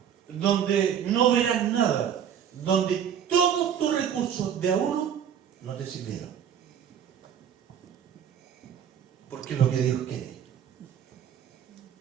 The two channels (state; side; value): quieter; left; 8.8 dB